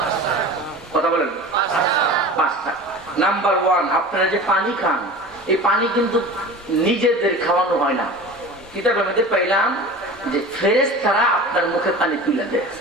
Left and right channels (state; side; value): normal; both; correlation 0.36